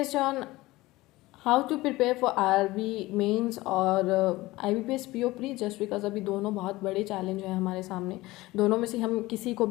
on how to prepare for IRB mains और IBPS PO pre just because अभी दोनों बहुत बड़े challenge हैं हमारे सामने। दोनों में से हम किसी को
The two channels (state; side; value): quieter; right; 19.2 dB